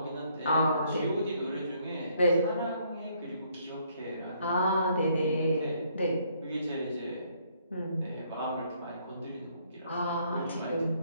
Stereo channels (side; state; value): both; inverted; correlation -0.68